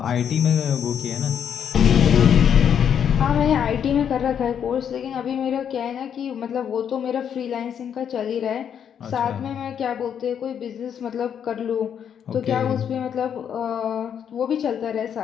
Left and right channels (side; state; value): right; quieter; 8.4 dB